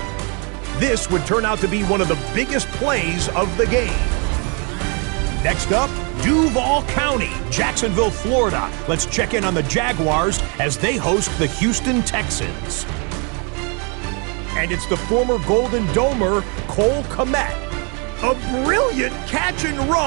This would turn out to be one of the biggest plays of the game. Next up, Duval County, Jacksonville, Florida. Let's check in on the Jaguars as they host the Houston Texans. And it's the former Golden Domer, Cole Kmet. A brilliant catch and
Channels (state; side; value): quieter; left; 34.8 dB